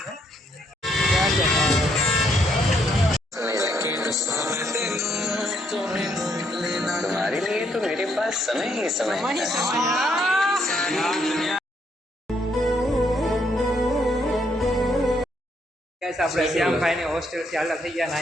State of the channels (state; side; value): normal; both; correlation 0.73